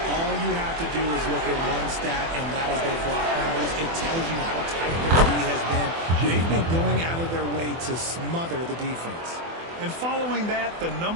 All you have to do is look at one stat, and that is their block numbers. It tells you how tight their D has been. They've been going out of their way to smother the defense. And following that, the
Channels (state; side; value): late; left; 24 ms